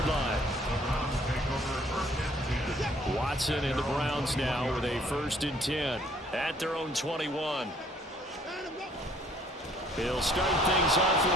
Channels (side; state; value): both; normal; correlation 0.60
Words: line. Watson and the Browns now with a 1st and 10 at their own 21. He'll start things off with